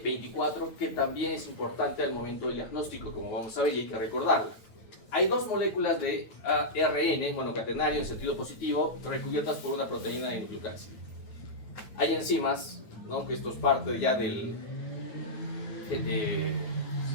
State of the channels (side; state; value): right; late; 9.2 ms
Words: que también es importante al momento del diagnóstico, como vamos a ver, y hay que recordarla. Hay dos moléculas de ARN monocatenario en sentido positivo recubiertas por una proteína de nucleocápside. Hay enzimas, ¿no? Que esto es parte ya del...